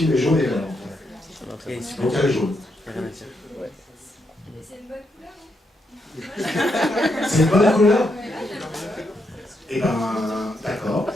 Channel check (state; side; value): normal; both; correlation 0.80